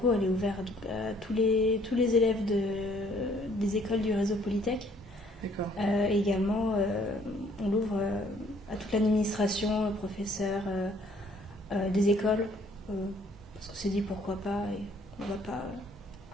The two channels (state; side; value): normal; both; correlation 0.61